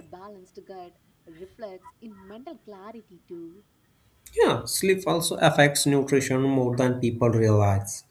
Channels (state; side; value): identical; both; correlation 1.00